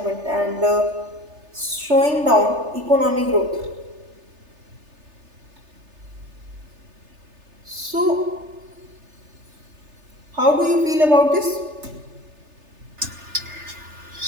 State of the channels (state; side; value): late; left; 3.3 ms